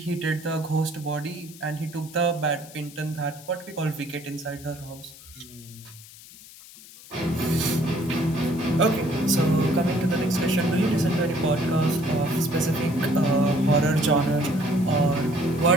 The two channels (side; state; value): left; noise; hiss, 19 dB below the sound